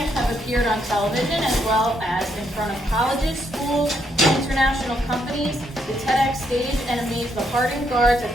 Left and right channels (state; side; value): normal; both; correlation 0.75